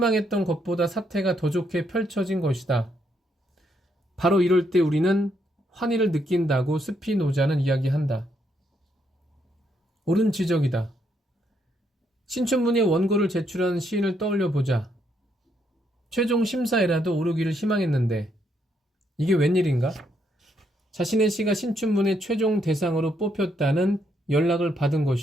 것보다 사태가 더 좋게 펼쳐진 것이다. 바로 이럴 때 우리는 환희를 느낀다고 스피노자는 이야기한다. 옳은 지적이다. 신춘문예 원고를 제출한 시인을 떠올려 보자. 최종 심사에라도 오르기를 희망했는데 이게 웬일인가? 자신의 시가 신춘문예 최종 대상으로 뽑혔다는 연락을 받은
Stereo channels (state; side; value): normal; both; correlation 0.75